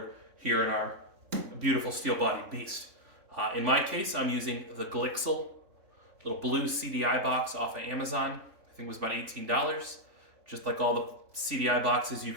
here in our beautiful steel-bodied beast. In my case, I'm using the Glixel little blue CDI box off of Amazon. I think it was about $18. Just like all the CDI boxes you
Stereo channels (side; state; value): left; late; 3.5 ms